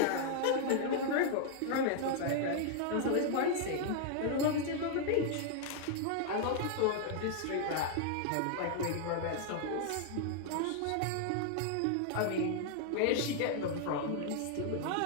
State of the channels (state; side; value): different; both; correlation 0.00